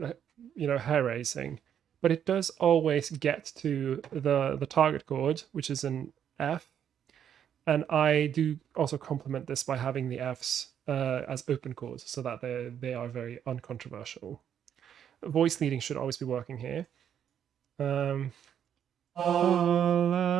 hair raising, but it does always get to the target chord, which is an F. And I do also complement this by having the Fs as open chords so that they are very uncontroversial. Voice leading should always be working here. Alas,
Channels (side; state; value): left; quieter; 9.1 dB